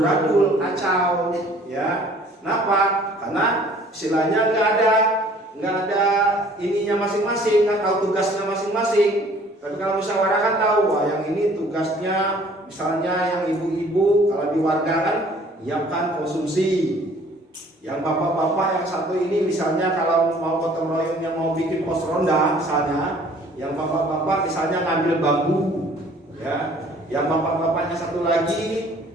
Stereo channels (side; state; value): both; normal; correlation 0.54